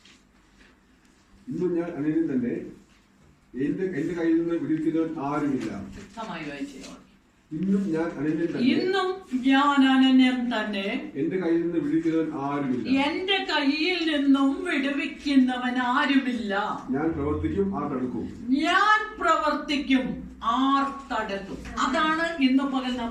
ഇന്നും ഞാൻ അനന്യൻ തന്നെ, എന്റെ കയ്യിൽ നിന്ന് വിടുവിക്കുന്നവൻ ആരുമില്ല. വ്യക്തമായി വായിച്ചോ. ഇന്നും ഞാൻ അനന്യൻ തന്നെ, ഇന്നും ഞാൻ അനന്യൻ തന്നെ, എന്റെ കയ്യിൽ നിന്ന് വിടുവിക്കുന്നവൻ ആരുമില്ല. എന്റെ കയ്യിൽ നിന്നും വിടുവിക്കുന്നവൻ ആരുമില്ല. ഞാൻ പ്രവർത്തിക്കും, ആർ തടുക്കും. ഞാൻ പ്രവർത്തിക്കും, ആർ തടുക്കും. അതാണ് ഇന്ന് പകൽ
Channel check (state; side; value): identical; both; correlation 1.00